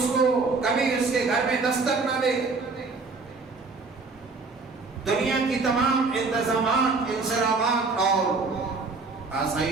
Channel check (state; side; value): quieter; left; 4.1 dB